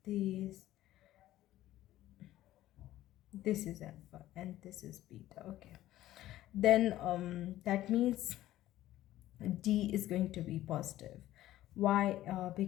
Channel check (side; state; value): right; quieter; 14.4 dB